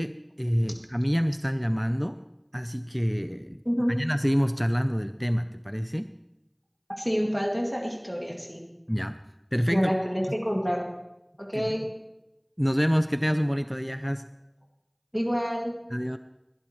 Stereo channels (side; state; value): both; identical; correlation 1.00